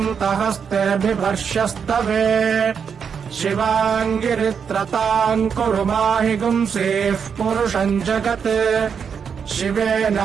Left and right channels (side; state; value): left; quieter; 6.7 dB